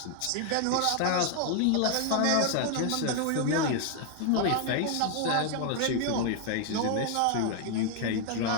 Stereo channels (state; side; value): different; both; correlation 0.00